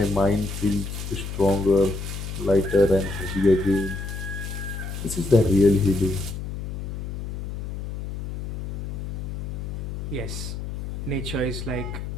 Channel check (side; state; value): left; noise; hum, 6 dB below the sound